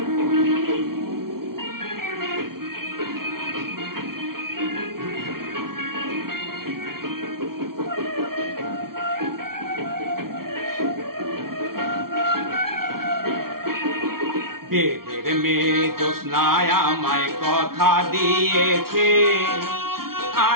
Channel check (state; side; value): late; left; 0.93 ms